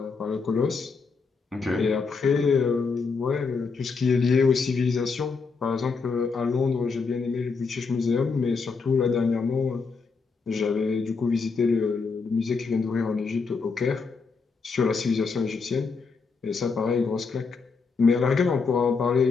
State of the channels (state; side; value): quieter; right; 4.7 dB